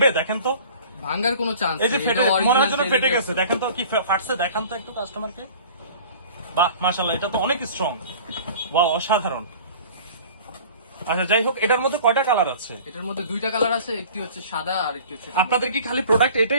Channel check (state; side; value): inverted; both; correlation -0.44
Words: দেখেন তো। ভাঙার কোনো চান্স এই যে ফেটে, মনে হয় যেন ফেটে গেছে, দেখেন তো কি ফাটছে, দেখান তো একটু কাস্টমারকে। বাহ, মাশাআল্লাহ, এটা তো অনেক স্ট্রং। ওয়াও, অসাধারণ। আচ্ছা, যাই হোক, এটার মধ্যে কয়টা কালার আছে? এটার মধ্যে দুইটা কালার আছে, একটি হচ্ছে সাদা আর একটি হচ্ছে। আপনাদের কি খালি প্রোডাক্ট